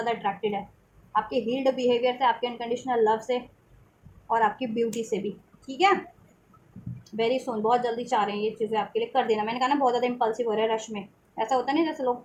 अट्रैक्टेड है, आपके हील्ड बिहेवियर से, आपके अनकंडीशनल लव से, और आपकी ब्यूटी से भी, ठीक है। वेरी सुन, बहुत जल्दी चाह रहे हैं ये चीज़ें आपके लिए कर देना। मैंने कहा ना बहुत ज़्यादा इम्पल्सिव हो रहा है, रश में ऐसा होता नहीं, जैसे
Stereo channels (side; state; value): both; identical; correlation 1.00